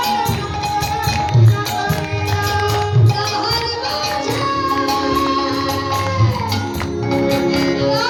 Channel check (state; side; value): identical; both; correlation 1.00